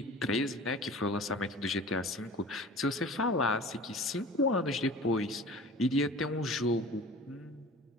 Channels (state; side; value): normal; both; correlation 0.40